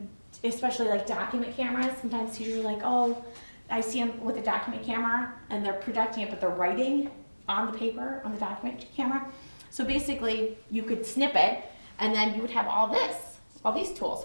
especially like document cameras, sometimes teachers are like, oh, I see them with a document camera and they're projecting it, but they're writing on the paper, on the document camera. So basically you could snip it and then you would have all these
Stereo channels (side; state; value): both; inverted; correlation -1.00